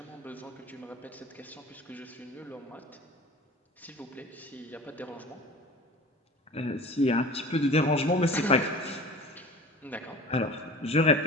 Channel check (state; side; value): normal; both; correlation 0.40